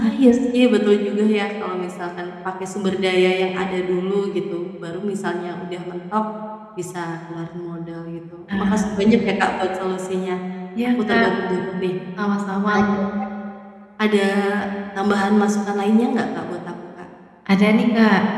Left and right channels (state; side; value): identical; both; correlation 1.00